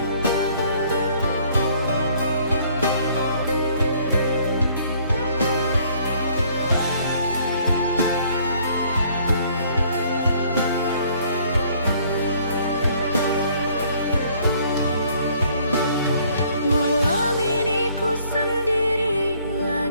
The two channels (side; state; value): both; inverted; correlation -0.61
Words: Malam ini ku sendiri